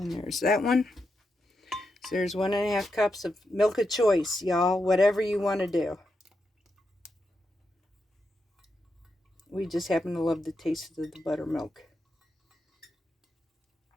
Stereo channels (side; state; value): both; normal; correlation 0.85